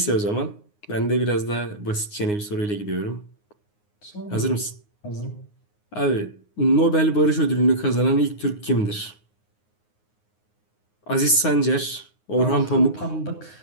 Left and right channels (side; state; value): right; late; 9.6 ms